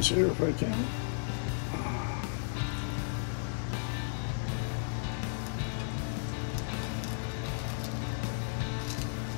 here if I can.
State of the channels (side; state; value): right; silent; digital silence